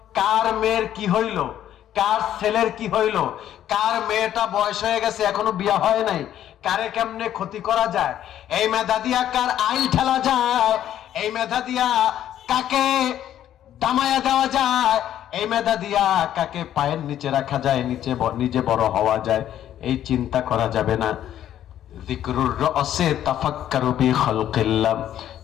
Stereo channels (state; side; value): quieter; right; 11.3 dB